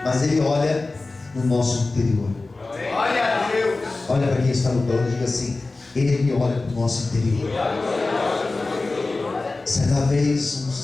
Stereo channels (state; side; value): quieter; right; 3.4 dB